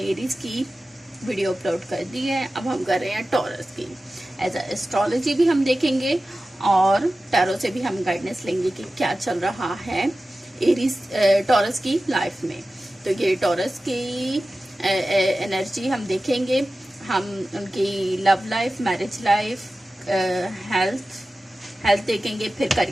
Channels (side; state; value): both; normal; correlation 0.95